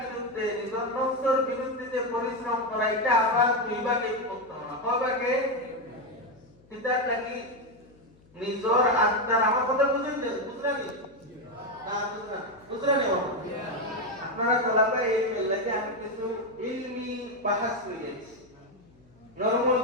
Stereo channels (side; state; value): left; noise; hum, 29 dB below the sound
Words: নিজের নফসের বিরুদ্ধে যে পরিশ্রম করা এটা আবার দুই ভাগে বিভক্ত হওয়া কয় ভাগে কিতাব লাগি নিজর আত্মার আমার কথা বুঝলেন বুঝলেন না বুঝলেন আপনারা তলাবে এই লাগে আমি কিছু ইলমি বাহাস করেছি নরমাল